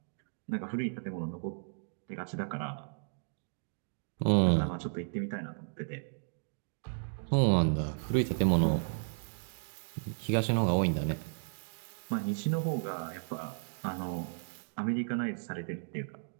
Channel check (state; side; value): silent; left; digital silence